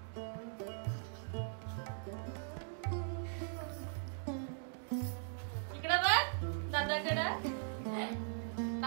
इकडे बघ दादाकडे.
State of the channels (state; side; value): silent; left; digital silence